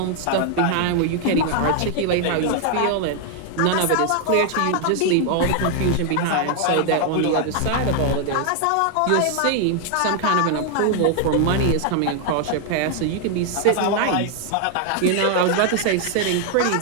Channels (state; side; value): different; both; correlation 0.00